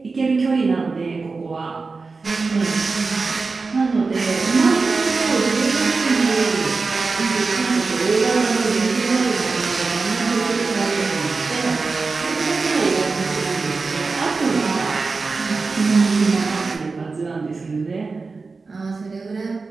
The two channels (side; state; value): left; quieter; 4.2 dB